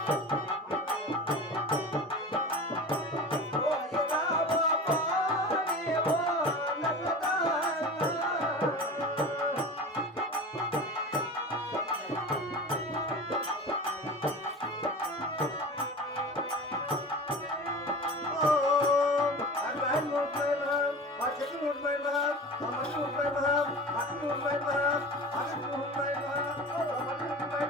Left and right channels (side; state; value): both; normal; correlation 0.34